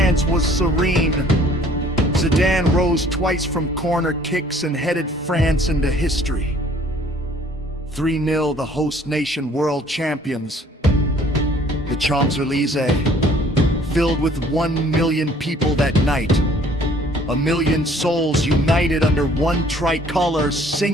was serene. Zidane rose twice from corner kicks and headed France into history. 3-0 the host nation world champions. The Champs-Élysées, filled with 1 million people that night. 1 million souls united under one tricolor,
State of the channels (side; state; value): both; normal; correlation 0.56